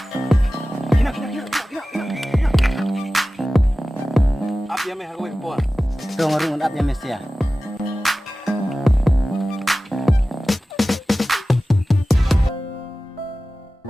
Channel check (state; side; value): normal; both; correlation 0.96